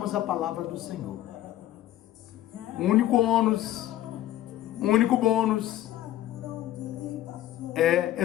a palavra do Senhor. O único bônus é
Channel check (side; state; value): right; quieter; 13.5 dB